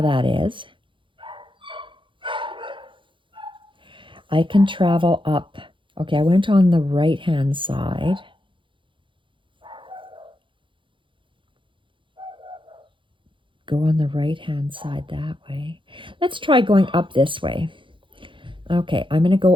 that is. I can travel up. Okay, I went on the right-hand side. Go on the right-hand side that way. Let's try going up this way. Okay, I'm going to go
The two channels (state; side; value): late; left; 0.24 ms